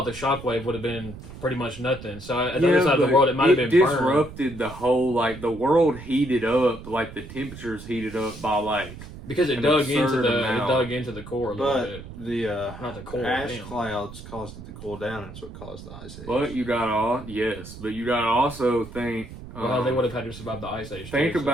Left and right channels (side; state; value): right; noise; rumble, 14 dB below the sound